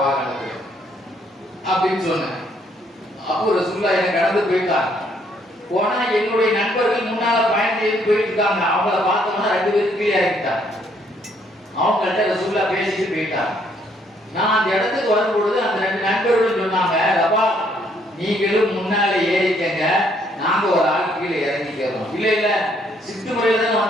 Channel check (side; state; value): both; normal; correlation 0.68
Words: வாகனத்துல அப்படின்னு சொன்னேன். அப்போ ரசூலுல்லாஹ் என்ன கடந்து போயிட்டாங்க. போனா என்னுடைய நண்பர்கள் முன்னால பயணம் செய்து போயிட்டு இருக்காங்க. அவங்கள பார்த்தோம்னா 2 பேரும் கீழே இறங்கிட்டாங்க. அவங்கள்ட்ட ரசூலுல்லாஹ் பேசிட்டு போயிட்டாங்க. நான் அந்த இடத்துக்கு வரும்பொழுது அந்த 2 நண்பர்களும் சொன்னாங்க, ரபா நீங்களும் முன்னால ஏறிக்கங்க, நாங்க ஒரு ஆள் கீழே இறங்கிக்கிறோம். இல்ல இல்ல சிட்டு முறையில தான்